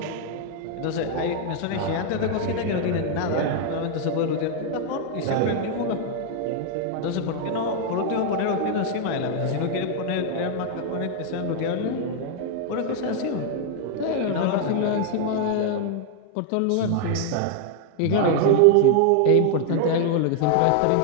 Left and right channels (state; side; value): different; both; correlation 0.00